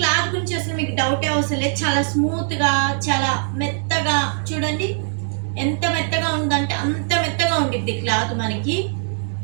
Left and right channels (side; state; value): left; silent; 65 dB below the other